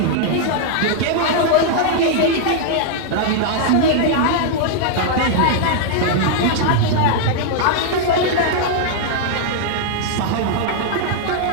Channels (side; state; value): both; different; correlation -0.01